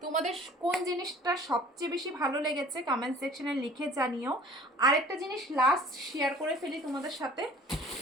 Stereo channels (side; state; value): both; normal; correlation 0.48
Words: তোমাদের কোন জিনিসটা সবচেয়ে বেশি ভালো লেগেছে কমেন্ট সেকশনে লিখে জানিও। আরেকটা জিনিস লাস্ট শেয়ার করে ফেলি তোমাদের সাথে,